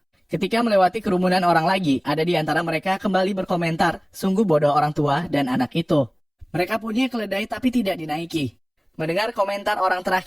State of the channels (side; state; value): both; identical; correlation 1.00